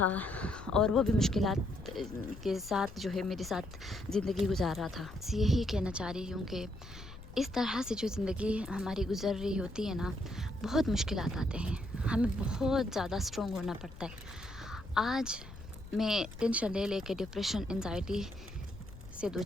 اور وہ بھی مشکلات کے ساتھ جو ہے میرے ساتھ زندگی گزار رہا تھا. یہی کہنا چاہ رہی ہوں کہ اس طرح سے جو زندگی ہماری گزر رہی ہوتی ہے نا، بہت مشکلات آتے ہیں، ہمیں بہت زیادہ اسٹرانگ ہونا پڑتا ہے. آج میں ٹینشن لے کے ڈپریشن انزائٹی سے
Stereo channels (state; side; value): noise; left; rumble, 15 dB below the sound